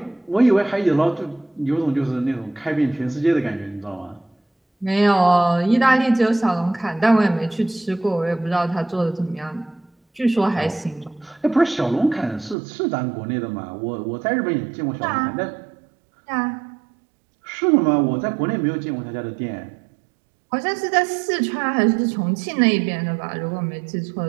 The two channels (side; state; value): left; drops out; at 12.6 s